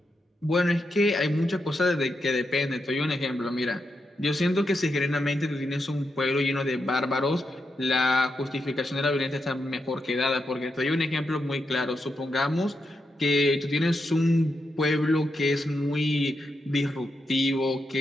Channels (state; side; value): normal; both; correlation 0.85